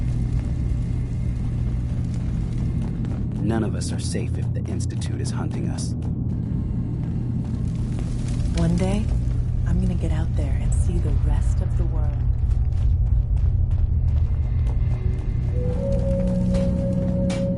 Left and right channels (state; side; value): identical; both; correlation 1.00